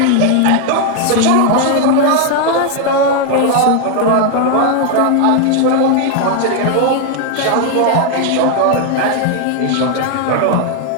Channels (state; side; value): different; both; correlation 0.00